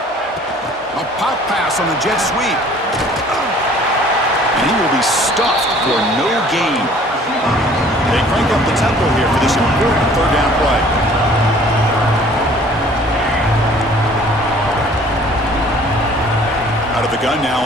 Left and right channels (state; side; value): normal; both; correlation 0.53